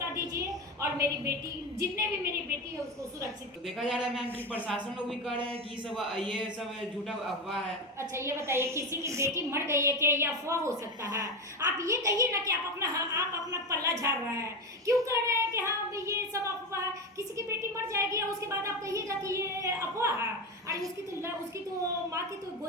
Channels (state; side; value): normal; both; correlation 0.18